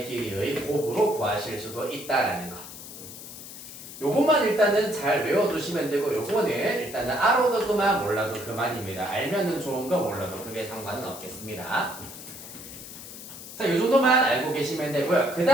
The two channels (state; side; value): noise; left; hiss, 13 dB below the sound